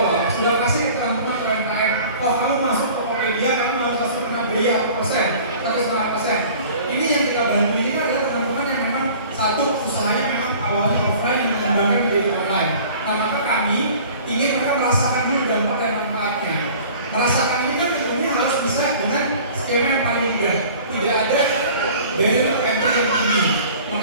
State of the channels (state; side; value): inverted; both; correlation -0.46